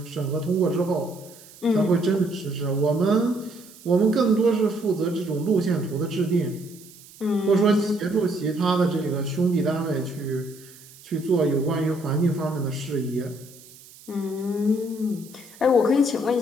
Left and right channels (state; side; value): noise; right; hiss, 22 dB below the sound